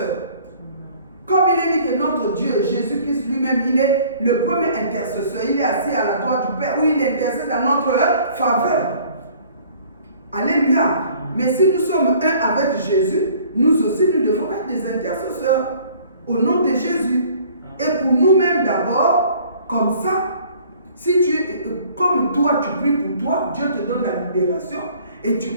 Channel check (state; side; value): inverted; both; correlation -0.54